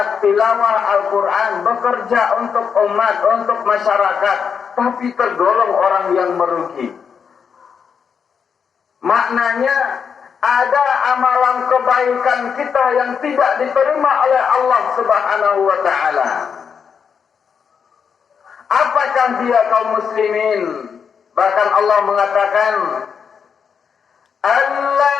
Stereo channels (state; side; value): quieter; right; 6.7 dB